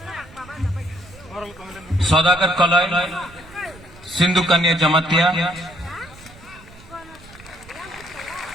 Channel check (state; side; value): noise; right; rumble, 22 dB below the sound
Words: Saudagar Kaloy, Sindhu Kanya Jamatia,